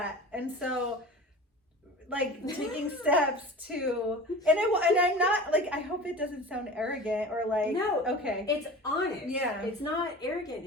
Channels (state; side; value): normal; both; correlation 0.36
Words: And so, like, taking steps to, and I'm not, like, I hope it doesn't sound arrogant or like, no, okay. It's honest. Yeah. It's not arrogant